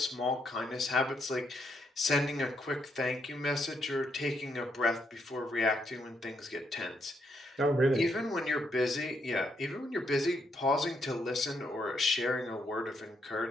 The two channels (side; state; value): both; normal; correlation 0.76